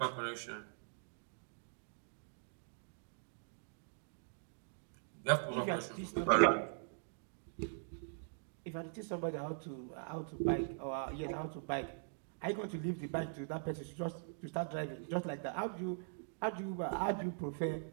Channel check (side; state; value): left; silent; digital silence